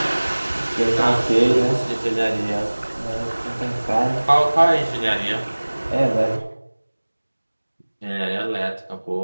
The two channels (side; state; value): both; inverted; correlation -1.00